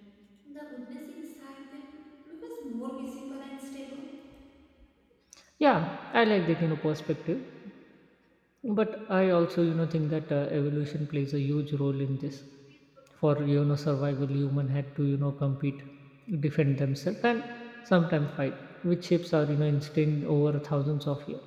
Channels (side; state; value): both; identical; correlation 1.00